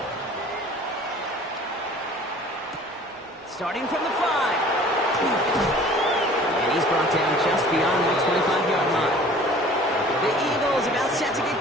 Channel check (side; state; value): both; normal; correlation 0.48